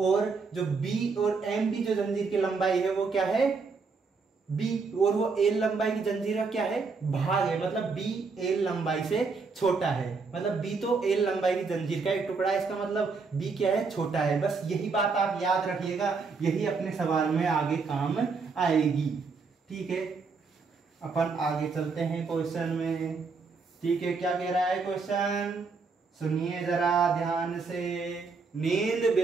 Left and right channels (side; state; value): left; quieter; 4.6 dB